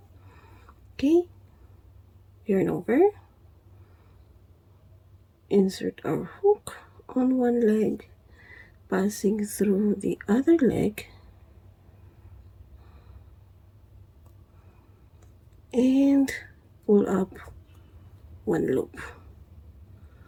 Okay, yarn over, insert our hook on one leg, passing through the other leg, and pull up one loop.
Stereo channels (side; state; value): both; identical; correlation 1.00